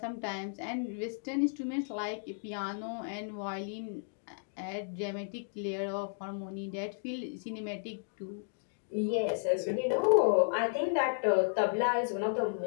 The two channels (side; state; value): right; silent; digital silence